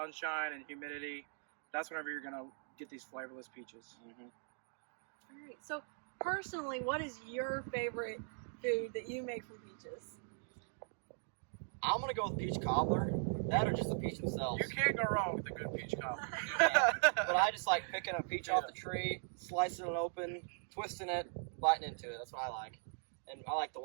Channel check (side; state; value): left; silent; digital silence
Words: and humidity, that's whenever you're going to get these flavorless peaches. Mm-hmm. All right. So personally, what is your favorite food that you make from peaches? I'm gonna go with peach cobbler. That or just the peach themselves. You can't go wrong with a good peach cobbler. But I just like picking a peach off the tree, slicing it open, twisting it, biting into it. That's what I like. And I like the